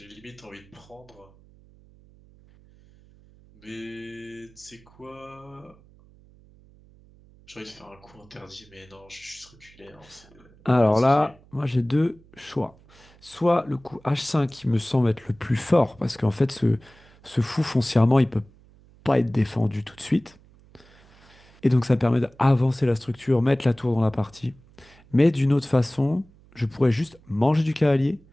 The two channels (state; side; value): noise; right; hum, 27 dB below the sound